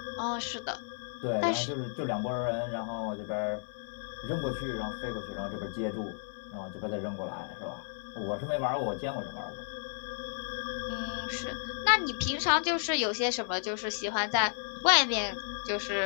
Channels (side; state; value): right; silent; digital silence